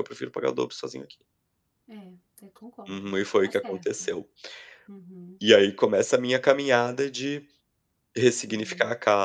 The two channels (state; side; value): identical; both; correlation 1.00